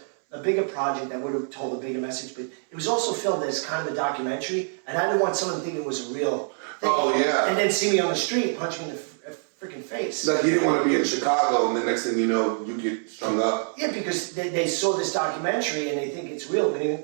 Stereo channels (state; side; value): silent; left; 61 dB below the other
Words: a bigger project, I would have told a bigger message. But it was also filmed as kind of a documentary, and I didn't want someone to think it was a real thing. Oh, yeah. And then see me on the street, punch me in the freaking face. Like, you didn't want to be in Chicago, and the next thing you know, you get strung up. Yeah, because they saw this documentary and they think it's real.